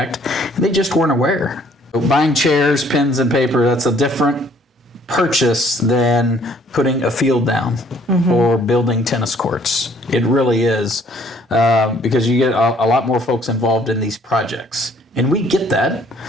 and they just weren't aware. So buying chairs, pens, and paper, that's a different purchase than putting a field down or building tennis courts. It really is, because you get a lot more folks involved in these projects. And we get that.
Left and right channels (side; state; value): both; normal; correlation 0.60